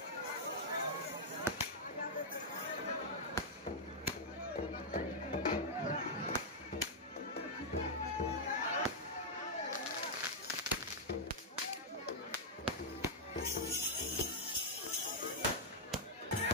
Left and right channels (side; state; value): both; normal; correlation -0.05